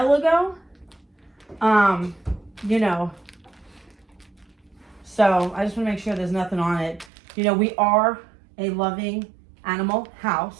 ago. You know. So I just want to make sure there's nothing on it. You know, we are a loving animal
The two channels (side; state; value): left; drops out; at 7.1 s